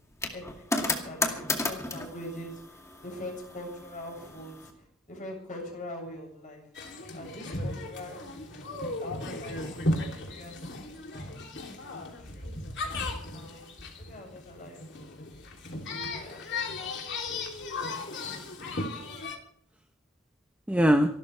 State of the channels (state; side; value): normal; both; correlation 0.62